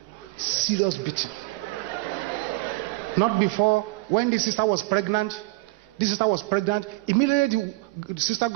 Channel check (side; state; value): left; quieter; 23.5 dB